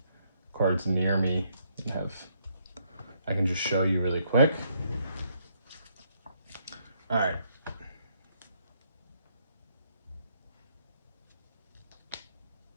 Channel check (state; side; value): inverted; both; correlation -0.72